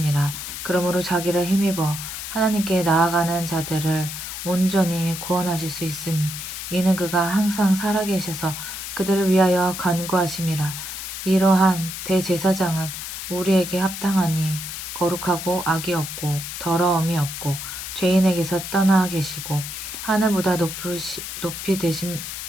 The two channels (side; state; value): left; noise; hiss, 7 dB below the sound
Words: 그러므로 자기를 힘입어 하나님께 나아가는 자들을 온전히 구원하실 수 있으니 이는 그가 항상 살아계셔서 그들을 위하여 간구하심이라. 이러한 대제사장은 우리에게 합당하니 거룩하고 악이 없고 더러움이 없고 죄인에게서 떠나 계시고 하늘보다 높이